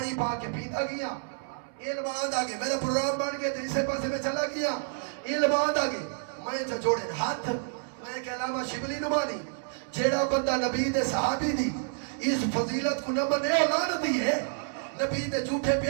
پا کے پیتا گیا علم آند آگے میرا پروگرام بن گئے تیسے پاسے میں چلا گیا علم آند آگے میں جو جوڑے ہاتھ میں کہ علامہ شبلی نمانی جیڑا بندہ نبی دے صحابی دی اس فضیلت کو نمبر نے اولاد دی ہے نبی دے جھوٹے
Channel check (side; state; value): left; silent; 58 dB below the other